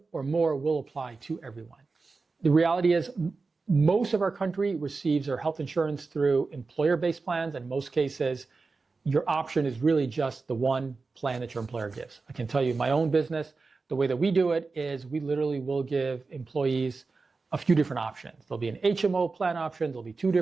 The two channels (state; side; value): quieter; left; 4.1 dB